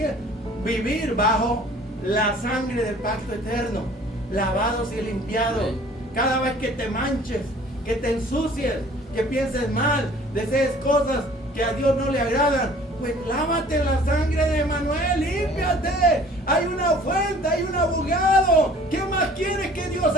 vivir bajo la sangre del pacto eterno, lavados y limpiados. Amén. Cada vez que te manches, que te ensucies, que pienses mal, desees cosas que a Dios no le agradan, pues lávate en la sangre de Emanuel, límpiate. Hay una fuente, hay un abogado. ¿Qué más quieres que Dios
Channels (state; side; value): normal; both; correlation 0.51